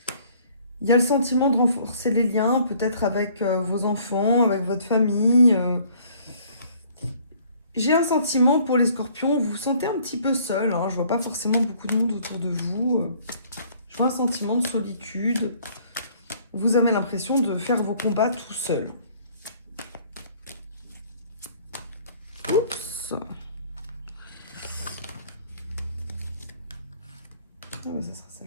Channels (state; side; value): inverted; both; correlation -0.58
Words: Il y a le sentiment de renforcer les liens, peut-être avec vos enfants, avec votre famille. J'ai un sentiment pour les scorpions, vous vous sentez un petit peu seul. Hein, je vois pas forcément beaucoup de monde autour de vous. Je vois un sentiment de solitude. Vous avez l'impression de faire vos combats tout seul. Oups. Ah ouais, ça sera